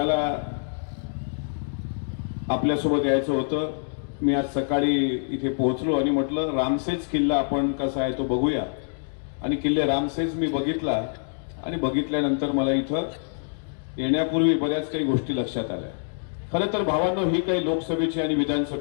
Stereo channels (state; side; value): silent; right; digital silence